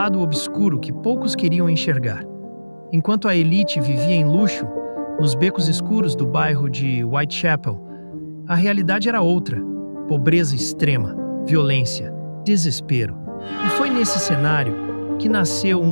obscuro que poucos queriam enxergar. Enquanto a elite vivia em luxo, nos becos escuros do bairro de Whitechapel, a realidade era outra: pobreza extrema, violência, desespero. E foi nesse cenário que nasceu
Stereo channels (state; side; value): inverted; both; correlation -1.00